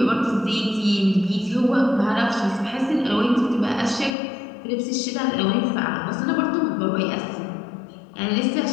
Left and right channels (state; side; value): drops out; right; at 4.1 s